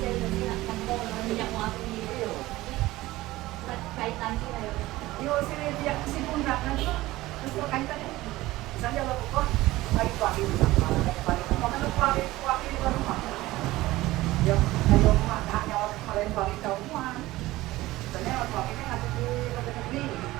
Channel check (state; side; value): quieter; left; 17.9 dB